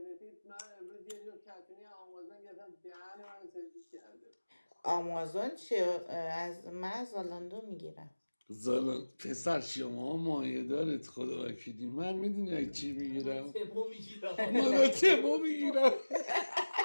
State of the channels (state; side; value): inverted; both; correlation -1.00